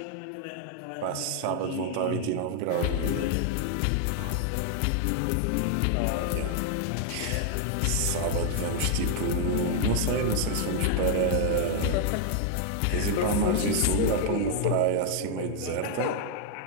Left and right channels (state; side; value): different; both; correlation 0.00